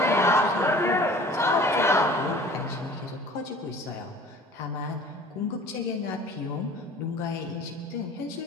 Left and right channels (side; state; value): both; normal; correlation 0.46